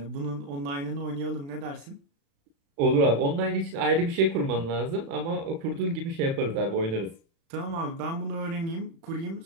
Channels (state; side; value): late; left; 36 ms